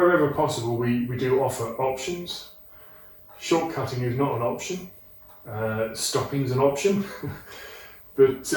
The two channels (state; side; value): identical; both; correlation 1.00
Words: possible we do offer options. Shortcutting is not an option, stopping is an option, but